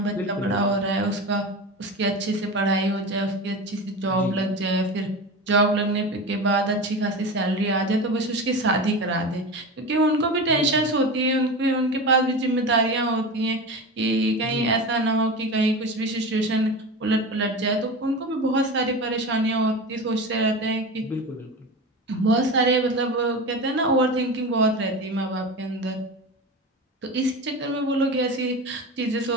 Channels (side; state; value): both; normal; correlation 0.27